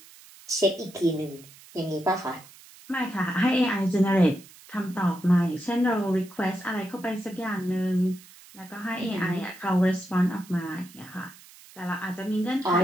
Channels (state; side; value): noise; right; hiss, 22 dB below the sound